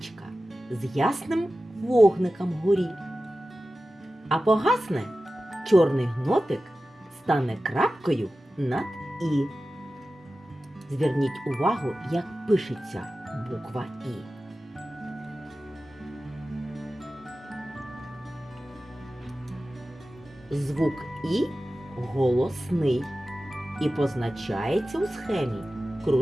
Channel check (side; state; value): both; normal; correlation 0.95